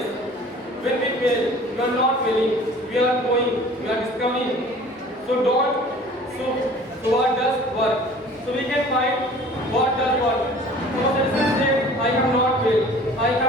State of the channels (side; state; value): both; normal; correlation 0.47